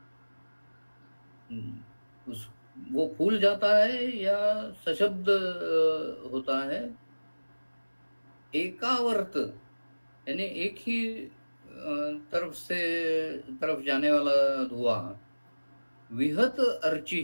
वो फूल जाता है या सशब्द होता है। एकावर्त यानी एक ही तरफ जाने वाला धुआं। विहत अर्ची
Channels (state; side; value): inverted; both; correlation -1.00